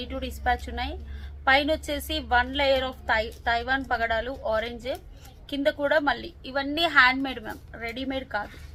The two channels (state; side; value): identical; both; correlation 1.00